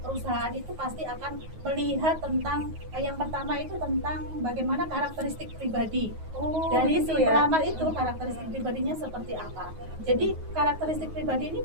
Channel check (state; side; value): late; left; 9.4 ms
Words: perusahaan itu pasti akan melihat tentang yang pertama itu tentang bagaimana karakteristik pribadi dari si begitu ya. pelamar itu, karakteristik pribadinya seperti apa. Jadi karakteristik pribadi ini